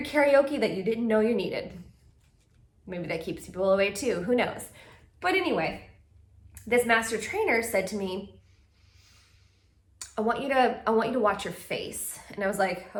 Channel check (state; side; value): identical; both; correlation 1.00